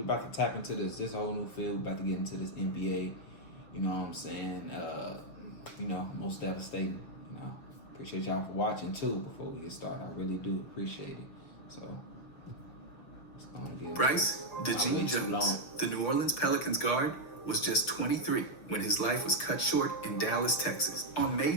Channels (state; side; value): late; right; 6.5 ms